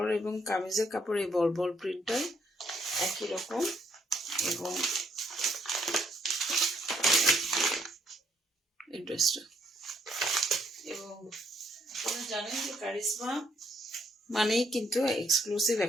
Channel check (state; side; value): normal; both; correlation 0.70